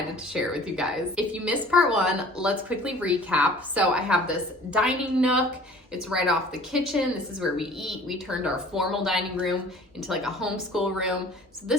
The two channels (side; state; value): both; normal; correlation 0.48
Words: to share it with you guys. If you missed part 1, let's quickly recap. So I have this dining nook. It's right off the kitchen. This is where we eat. We turned our formal dining room into like a homeschool room. So